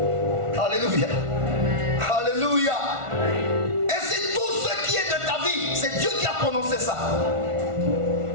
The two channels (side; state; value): left; late; 1.4 ms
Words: Alléluia. Alléluia. Et c'est tout ce qui est de ta vie, c'est Dieu qui a prononcé ça.